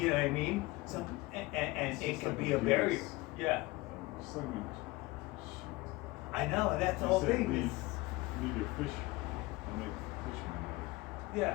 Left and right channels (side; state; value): right; quieter; 21.3 dB